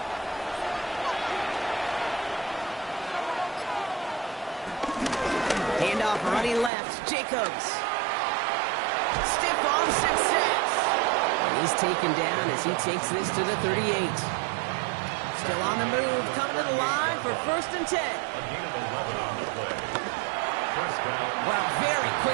Handoff running left. Jacobs. Stiff arm success. He's taken down as he takes this to the 38. Still on the move. Coming to the line for 1st and 10. Wow, very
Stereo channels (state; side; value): drops out; left; at 6.7 s